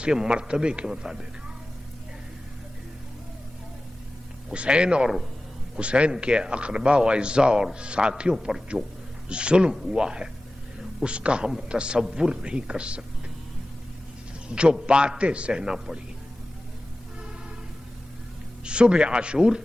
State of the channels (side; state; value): both; normal; correlation 0.96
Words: کے مرتبے کے مطابق ہے۔ حسین کے اقربا و اعزاء اور ساتھیوں پر جو ظلم ہوا ہے اس کا ہم تصور نہیں کر سکتے، جو باتیں سہنا پڑی۔ صبح عاشور